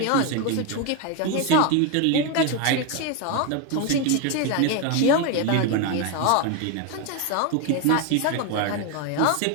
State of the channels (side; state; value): both; different; correlation 0.02